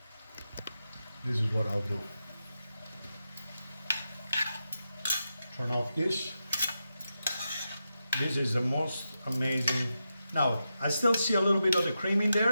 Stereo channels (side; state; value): both; inverted; correlation -0.88